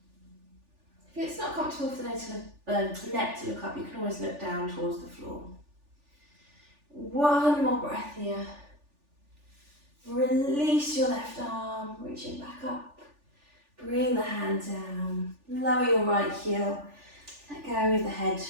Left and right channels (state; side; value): late; left; 3.4 ms